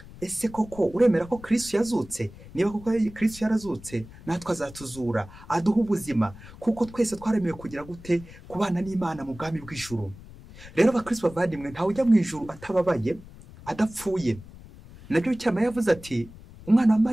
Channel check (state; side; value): noise; left; rumble, 18 dB below the sound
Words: Ese koko uremera ko Kristo yazutse? Niba koko Kristo yarazutse, natwe azatuzura, aduha ubuzima, kuko twese twaremewe kugira gute kubana n'Imana mu bwami bw'ijuru. rero abakristo bavandimwe ntawe ujya mu ijuru atababaye adapfuye. Nabyo cyama yavuze ati umwana wa